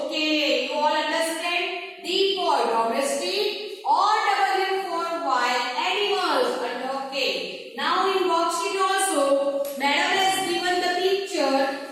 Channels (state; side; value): identical; both; correlation 1.00